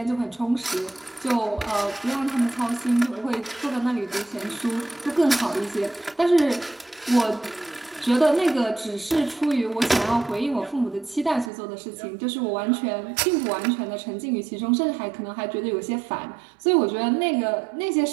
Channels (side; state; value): left; drops out; at 11.5 s